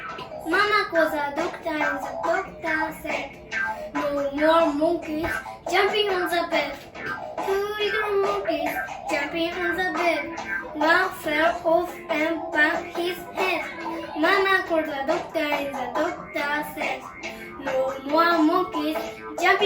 Mama called the doctor and the doctor said, "No more monkeys jumping on the bed." Two little monkeys jumping on the bed. One fell off and banged his head. Mama called the doctor and the doctor said, "No more monkeys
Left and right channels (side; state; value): both; identical; correlation 1.00